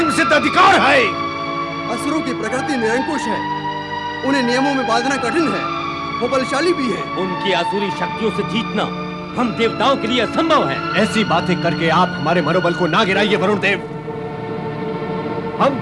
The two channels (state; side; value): identical; both; correlation 1.00